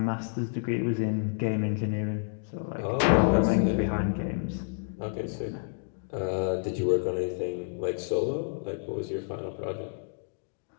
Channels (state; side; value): silent; right; digital silence